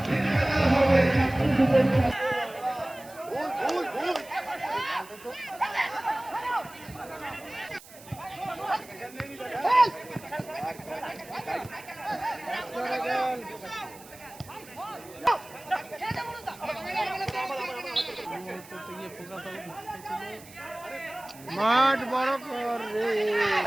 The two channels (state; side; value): noise; right; hiss, 20 dB below the sound